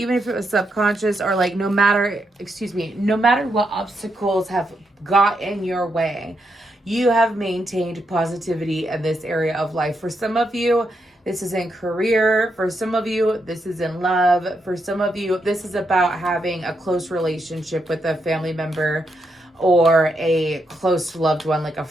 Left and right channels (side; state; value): both; normal; correlation 0.81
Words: if it was subconscious or like no matter what obstacles have got in your way, you have maintained positivity in this area of life. For some of you, this is in career. For some of you, this is in love. For some of you, this is about having a close relationship with a family member or a close loved one, like a